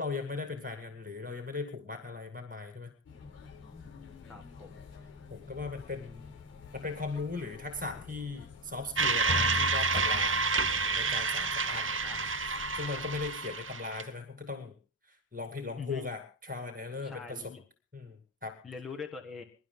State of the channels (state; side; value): normal; both; correlation 0.12